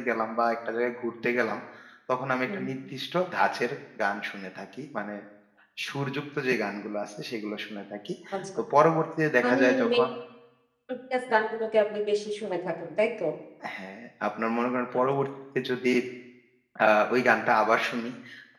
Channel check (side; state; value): both; identical; correlation 1.00